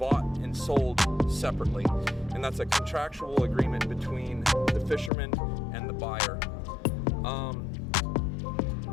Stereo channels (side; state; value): right; drops out; at 5.1 s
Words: and sold separately, and that's a contractual agreement between the fisherman and the buyer.